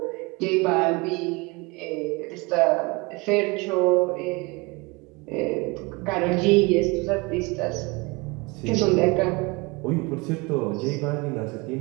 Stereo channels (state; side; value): quieter; left; 25.9 dB